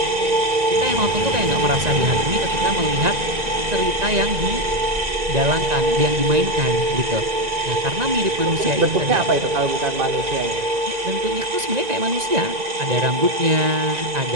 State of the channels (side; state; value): left; late; 1.9 ms